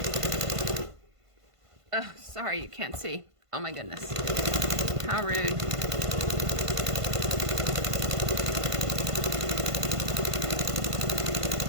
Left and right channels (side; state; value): left; late; 1.5 ms